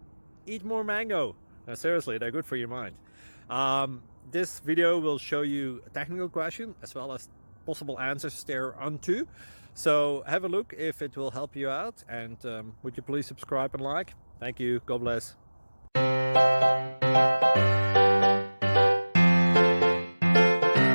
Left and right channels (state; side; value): inverted; both; correlation -1.00